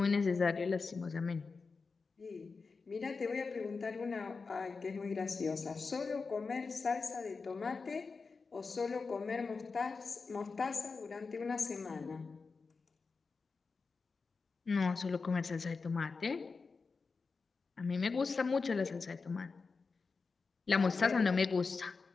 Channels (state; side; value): quieter; right; 4.5 dB